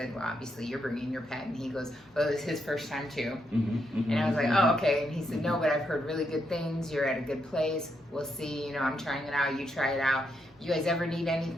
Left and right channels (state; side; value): normal; both; correlation 0.80